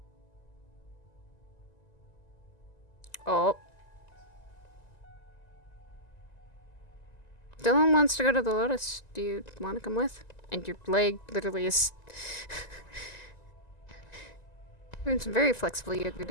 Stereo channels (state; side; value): late; right; 1.9 ms